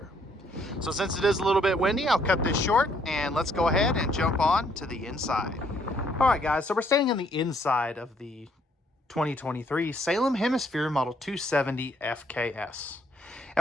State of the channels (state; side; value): normal; both; correlation 0.68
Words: So since it is a little bit windy, I'll cut this short and let's go ahead and jump on to the inside. Alright guys, so we're standing on the inside of the 2023 Salem Hemisphere Model 270 FKS.